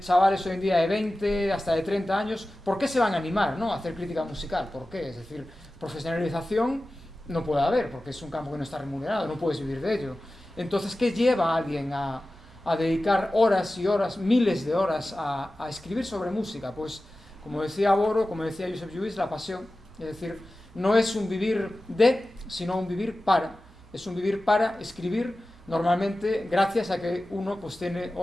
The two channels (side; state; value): right; noise; hum, 24 dB below the sound